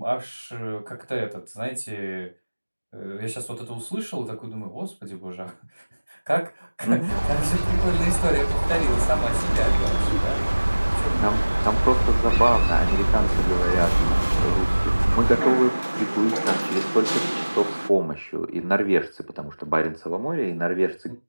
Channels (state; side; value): inverted; both; correlation -1.00